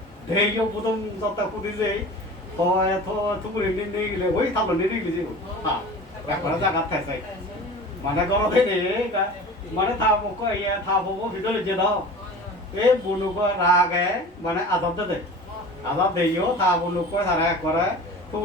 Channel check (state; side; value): normal; both; correlation 0.38